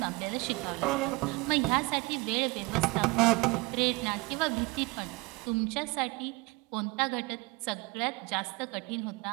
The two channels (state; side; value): quieter; left; 25.0 dB